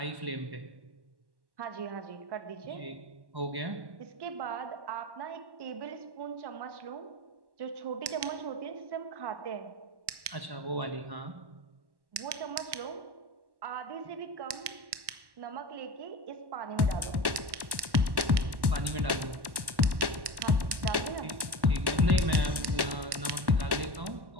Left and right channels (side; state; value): left; late; 1.1 ms